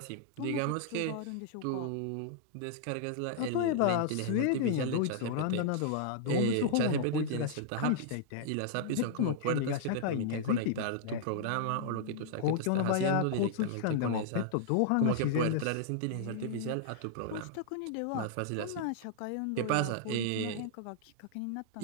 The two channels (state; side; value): different; both; correlation -0.01